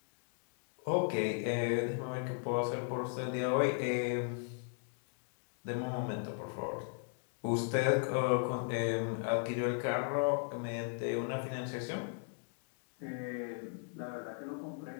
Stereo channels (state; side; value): silent; right; 53 dB below the other